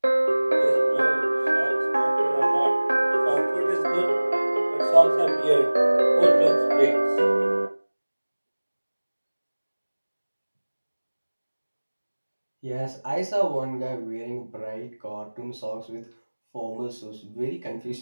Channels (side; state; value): both; inverted; correlation -1.00